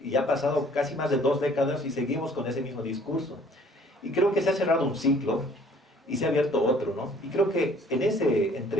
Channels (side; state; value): both; normal; correlation 0.56